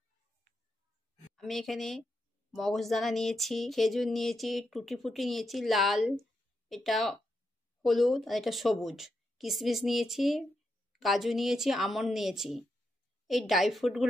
আমি এখানে মগজদানা নিয়েছি, খেজুর নিয়েছি, টুটি ফুটি নিয়েছি লাল, এটা হলুদ, আর এটা সবুজ। কিশমিশ নিয়েছি, কাজু নিয়েছি, আমন্ড নিয়েছি। এই ড্রাই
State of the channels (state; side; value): normal; both; correlation 0.84